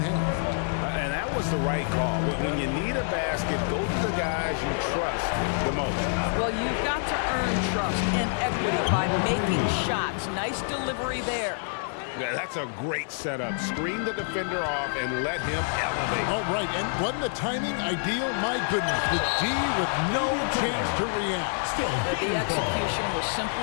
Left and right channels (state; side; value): silent; right; digital silence